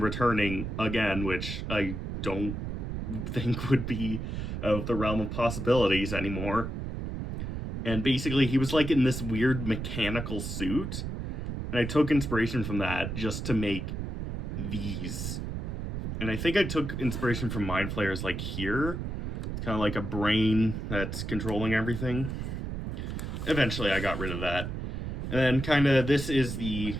returning again, which I don't think would be of the realm of possibilities anymore. And basically he was like in this weird mechanical suit, and I took inspiration from that just to make these. And I think I took inspiration from Mind Flayers, like here. It's kind of like a brain that's controlling everything. Eventually I got rid of that. And then kind of, this is the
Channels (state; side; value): noise; right; rumble, 4 dB below the sound